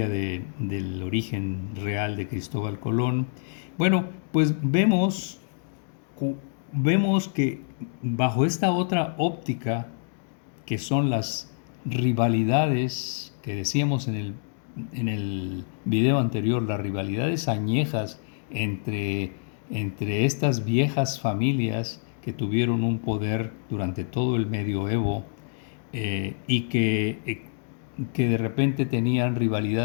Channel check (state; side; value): silent; right; digital silence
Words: del origen real de Cristóbal Colón. Bueno, pues vemos que bajo esta otra óptica, que son las rivalidades que decíamos en el video anterior, las rivalidades añejas entre, entre estas viejas familias que tuvieron un poder durante todo el medioevo, y que de repente tenían